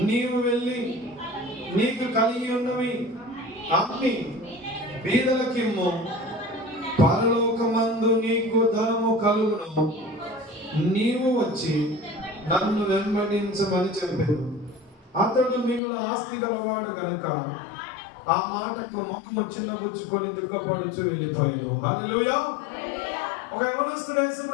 నీవు వెళ్ళి నీకు కలిగి ఉన్నవి అమ్మి బీదలకిమ్ము, పరలోకమందు నీకు ధనము కలుగును, నీవు వచ్చి నన్ను వెంబడించమని చెప్పాడు. అతడు మిగుల ఆస్తి గలవాడు కనుక ఆ మాటకు ముఖము చిన్నబుచ్చుకొని దుఃఖపడుచు వెళ్ళిపోయాను. హల్లెలూయా. ఒక యవనస్తుడు యేసు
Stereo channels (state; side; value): drops out; right; at 15.8 s